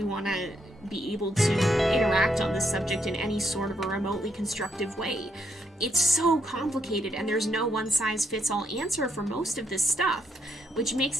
want to be able to interact on this subject in any sort of a remotely constructive way. It's so complicated, and there's no one-size-fits-all answer for most of this stuff, which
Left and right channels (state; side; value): normal; both; correlation 0.75